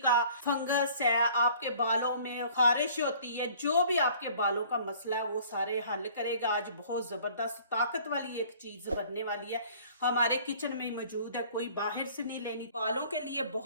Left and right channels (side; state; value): both; inverted; correlation -0.53